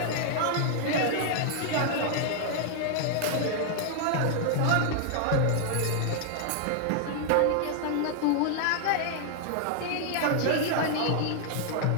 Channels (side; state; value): both; different; correlation -0.01